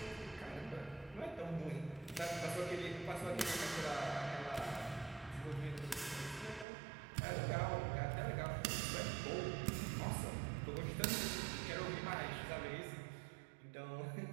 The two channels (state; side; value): drops out; left; at 6.7 s